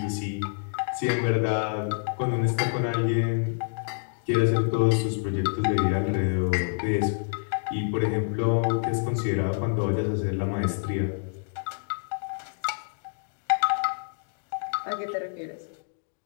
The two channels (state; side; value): silent; right; digital silence